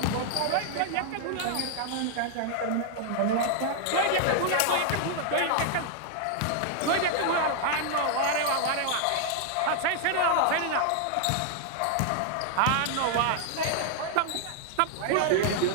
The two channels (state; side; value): different; both; correlation 0.00